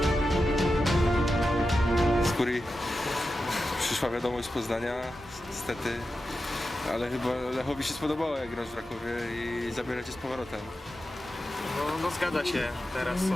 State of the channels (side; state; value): both; normal; correlation 0.91